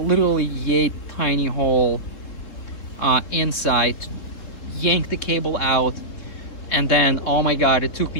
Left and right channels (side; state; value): right; late; 3.9 ms